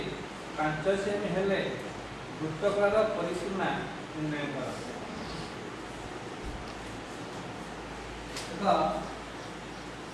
5 सेमी हेले वृत्तकलार परिसीमा निर्णय कर।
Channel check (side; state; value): both; identical; correlation 1.00